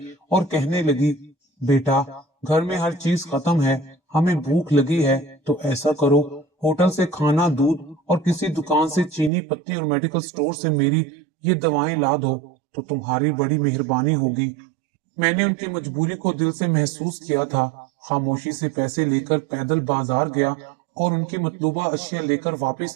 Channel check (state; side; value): drops out; left; at 9.3 s